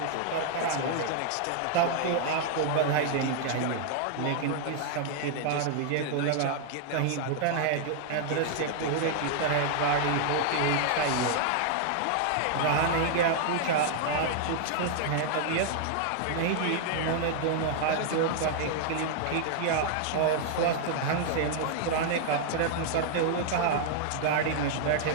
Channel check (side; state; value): both; different; correlation -0.01